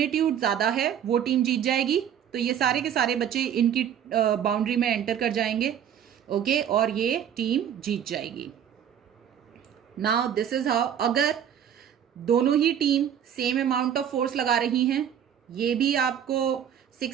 ज्यादा है, वो टीम जीत जाएगी। तो ये सारे के सारे बच्चे इनकी बाउंड्री में एंटर कर जाएंगे। ओके, और ये टीम जीत जाएगी। नाउ दिस इज हाउ, अगर दोनों ही team same amount of force लगा रही हैं, ये भी आपको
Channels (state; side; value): quieter; left; 9.2 dB